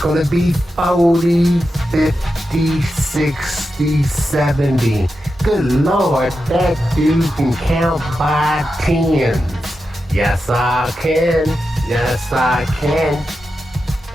be 40, 50, 60, 70. Good Lord, that dude can count by tens. Yes, I can. Yes, I can.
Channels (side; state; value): both; normal; correlation 0.89